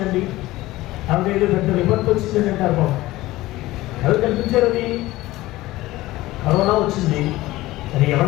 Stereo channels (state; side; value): quieter; right; 17.7 dB